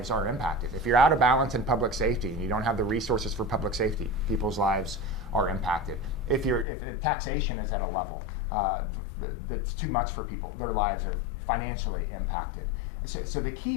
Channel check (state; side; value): drops out; right; at 6.7 s